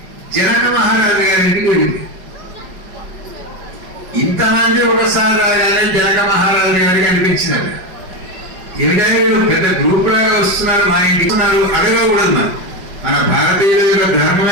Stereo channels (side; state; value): left; late; 5.3 ms